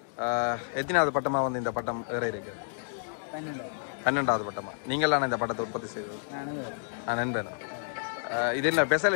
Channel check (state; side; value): silent; right; digital silence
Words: எத்தனாவது பட்டமா வந்து இந்த பட்டம் வேற இருக்கு? 12வது பட்டமா? நீங்களான இந்த பட்டத்தை உற்பத்தி செய்தது? நான் நண்பேன். இது என்ன